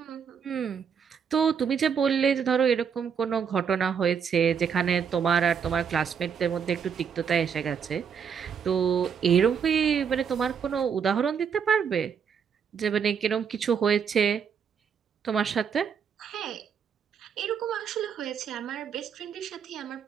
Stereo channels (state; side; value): quieter; left; 7.0 dB